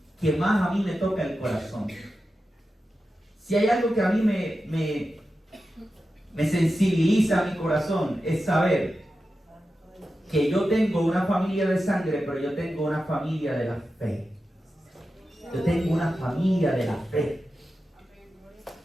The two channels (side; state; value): both; normal; correlation 0.92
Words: que más a mí me toca el corazón. Si hay algo que a mí me sensibiliza mi corazón, es saber que yo tengo una familia de sangre, pero yo tengo una familia de la fe. Yo tengo una familia de la fe.